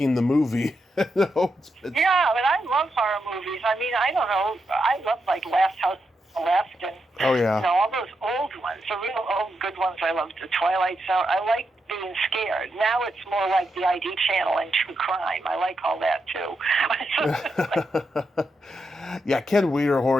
the movie. Yeah, but I love horror movies. I mean, I don't know. I love Last House on the Left and all those old ones, the real old good ones. I love the Twilight Zone. I like being scared. Now it's more like the ID channel and true crime. I like all that too. Yeah, Ken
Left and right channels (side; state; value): both; normal; correlation 0.84